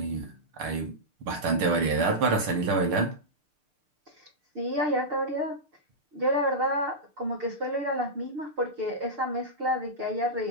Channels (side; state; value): left; late; 6.7 ms